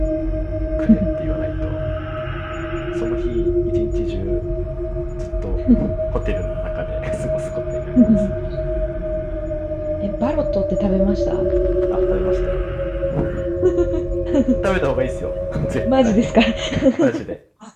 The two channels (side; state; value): both; identical; correlation 1.00